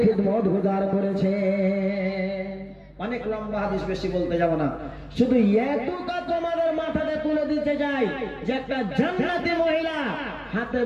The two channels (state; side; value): identical; both; correlation 1.00